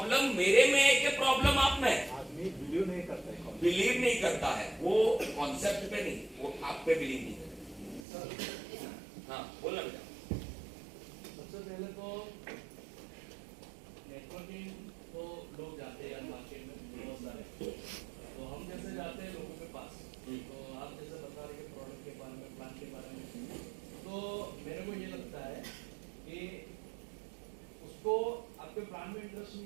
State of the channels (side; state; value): left; drops out; at 8.1 s